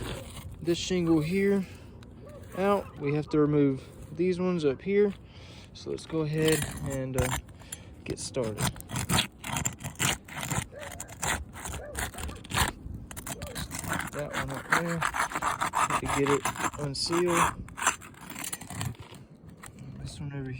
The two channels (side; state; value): both; identical; correlation 1.00